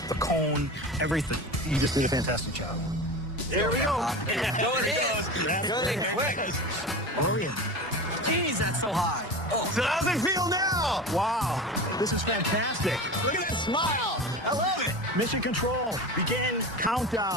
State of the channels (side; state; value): both; normal; correlation 0.30